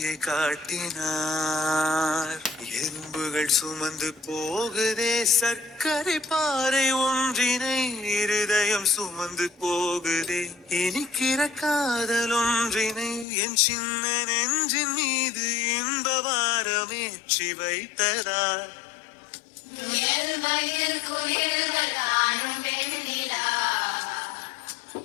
காட்டினார் எறும்புகள் சுமந்து போகுதே சர்க்கரை பாறை ஒன்றினை இருதயம் சுமந்து போகுதே இனிக்கிற காதல் ஒன்றினை என் சின்ன நெஞ்சின் மீது இன்பவாரமேற்றி வைத்ததார்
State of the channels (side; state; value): right; drops out; at 13.2 s